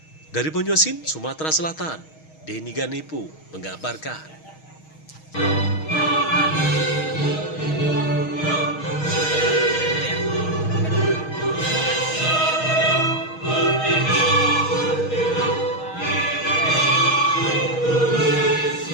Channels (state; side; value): late; right; 6.4 ms